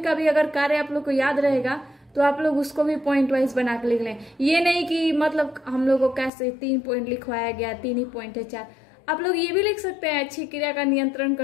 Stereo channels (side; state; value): right; drops out; at 6.3 s